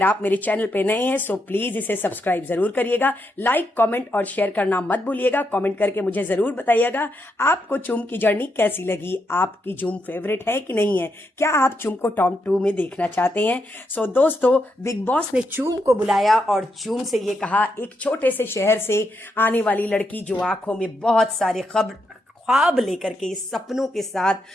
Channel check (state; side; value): normal; both; correlation 0.81